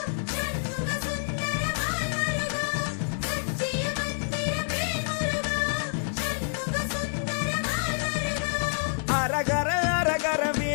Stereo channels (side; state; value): right; silent; digital silence